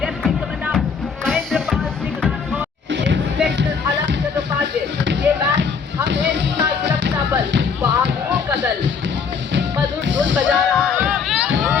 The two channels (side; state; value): right; quieter; 5.9 dB